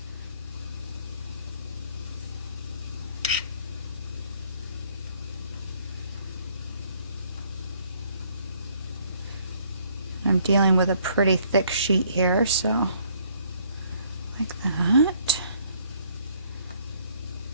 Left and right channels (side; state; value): both; inverted; correlation -0.63